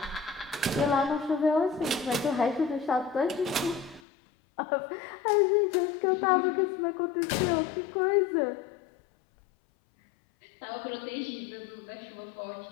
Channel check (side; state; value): right; drops out; at 4.0 s